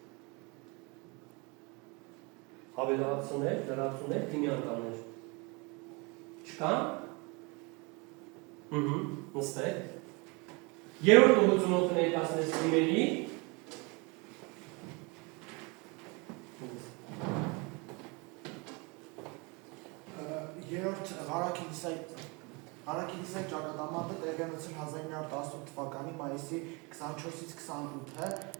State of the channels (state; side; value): quieter; left; 29.0 dB